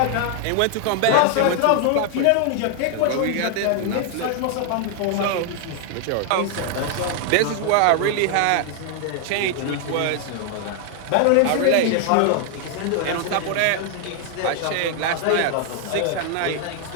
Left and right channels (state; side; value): different; both; correlation 0.00